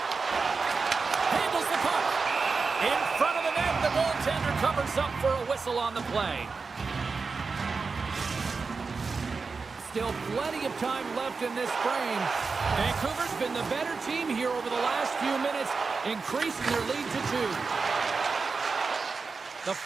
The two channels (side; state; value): left; quieter; 4.6 dB